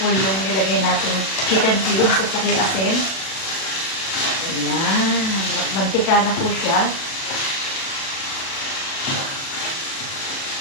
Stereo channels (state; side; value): late; right; 37 ms